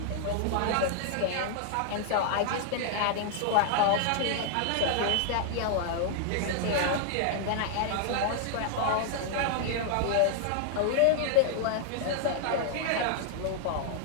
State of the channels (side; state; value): both; different; correlation 0.00